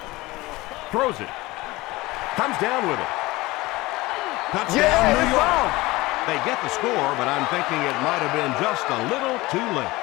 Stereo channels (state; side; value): quieter; right; 20.5 dB